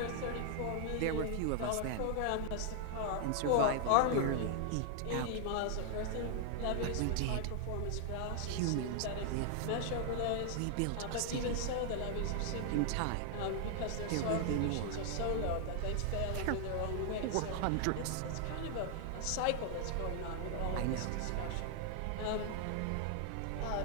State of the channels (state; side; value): different; both; correlation 0.00